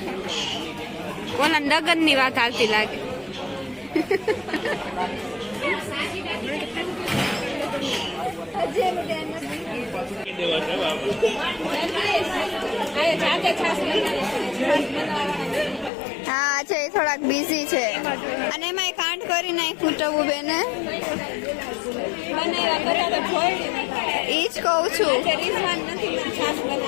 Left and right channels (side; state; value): right; drops out; at 15.9 s